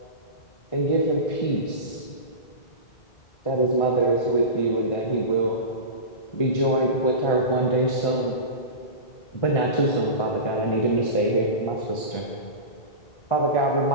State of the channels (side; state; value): right; late; 1.5 ms